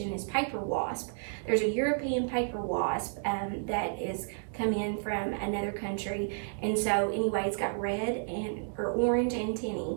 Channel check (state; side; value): silent; left; digital silence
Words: is paper wasp. There's a European paper wasp that is come in from another country, and so anyway, it's got red or orange